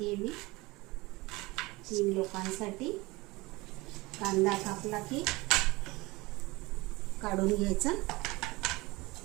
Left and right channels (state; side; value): quieter; left; 22.3 dB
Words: मी, 3 लोकांसाठी। कांदा कापला की काढून घ्यायचा,